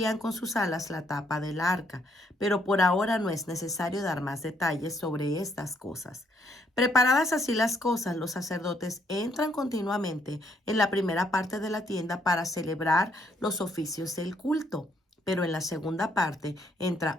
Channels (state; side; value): normal; both; correlation 0.70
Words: con sus alas la tapa del arca. Pero por ahora no es necesario dar más detalles sobre estas cosas. Preparadas así las cosas, los sacerdotes entran continuamente en la primera parte de la tienda para celebrar los oficios del culto. Pero en la segunda parte